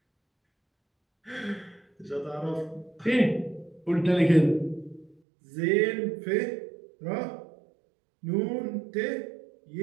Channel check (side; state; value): left; drops out; at 5.2 s